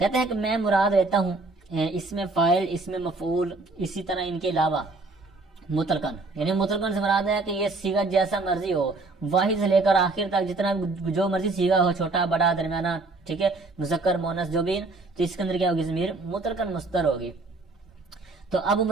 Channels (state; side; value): quieter; left; 3.4 dB